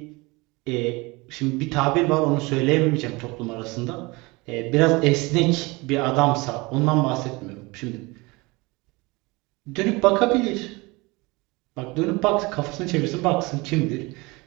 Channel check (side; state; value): left; quieter; 24.5 dB